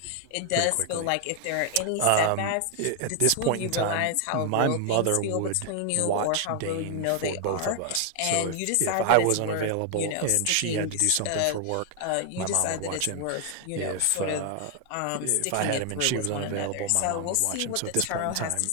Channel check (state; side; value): different; both; correlation 0.00